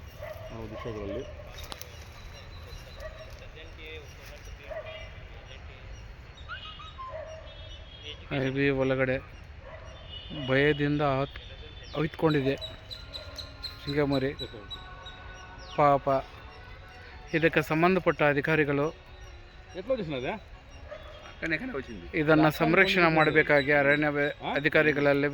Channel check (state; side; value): identical; both; correlation 1.00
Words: ನಾವು ದೃಶ್ಯಗಳಲ್ಲಿ. ಅರಬಿ ಒಳಗಡೆ ಭಯದಿಂದ ಅವಿತ್ಕೊಂಡಿದೆ ಜಿಂಕೆ ಮರಿ. ಪಾಪ ಇದಕ್ಕೆ ಸಂಬಂಧಪಟ್ಟ ಅಧಿಕಾರಿಗಳು ಇದನ್ನು ಸಂರಕ್ಷಣೆ ಮಾಡಬೇಕಾಗಿ ಅರಣ್ಯ ಅಧಿಕಾರಿಗಳಲ್ಲಿ